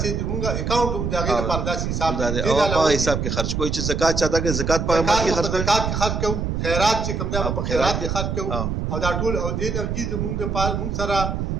څه موږ اکاونټ هم دغه لپاره داسې حساب دی او په حساب کې خرج کوی چې زکات چاته کې زکات په امر کې خرج کوو خیرات چې کوم دا په خیرات کې خرج کوو او دا ټول او دې نه چې موږ د پال موږ سره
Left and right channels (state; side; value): noise; right; rumble, 1 dB below the sound